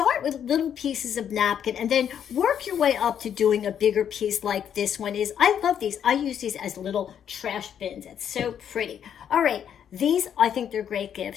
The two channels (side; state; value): right; quieter; 8.9 dB